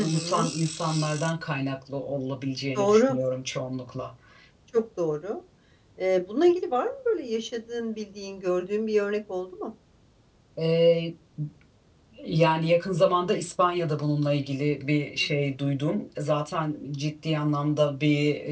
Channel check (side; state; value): both; identical; correlation 1.00